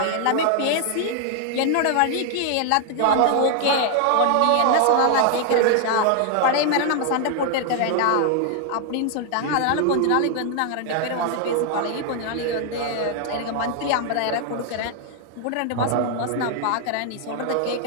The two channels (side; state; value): both; different; correlation 0.00